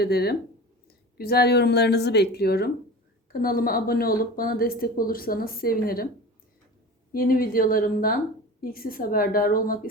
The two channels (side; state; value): both; normal; correlation 0.35